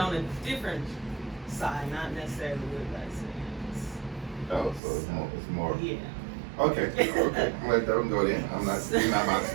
a different side, not necessarily with us. Oh, so it's more. Yeah. Okay. I'm gonna let that one go then. You're not about to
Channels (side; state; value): left; drops out; at 4.8 s